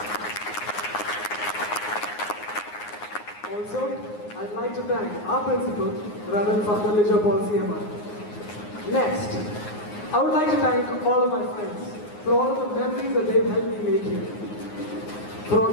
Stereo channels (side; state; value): right; late; 9.6 ms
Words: Also, I'd like to thank our principal, Reverend Father Lijo Paul CMI. Next, I would like to thank all of my friends for all of the memories that they've helped me make here. For all